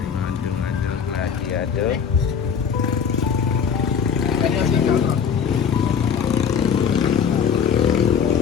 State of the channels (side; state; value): right; quieter; 6.9 dB